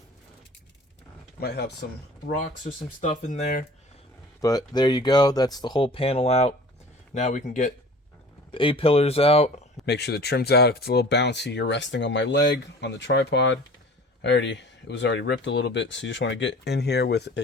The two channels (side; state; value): both; normal; correlation 0.44